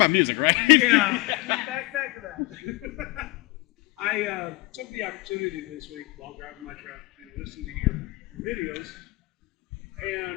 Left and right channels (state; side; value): quieter; right; 22.5 dB